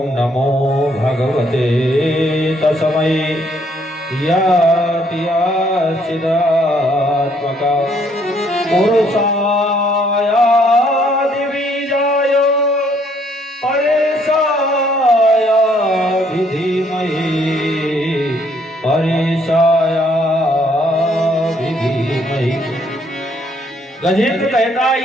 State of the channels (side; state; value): both; normal; correlation 0.67